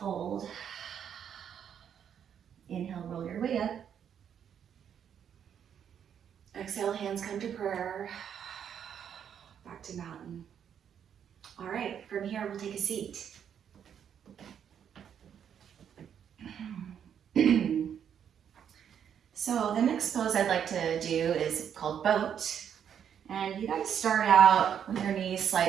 Inhale, roll your way up. Exhale, hands come to prayer. Back to mountain. All right, from here, we'll take a seat. So the next pose I'd like to do is called boat. And you gotta start out with your knees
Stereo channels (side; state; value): left; quieter; 8.5 dB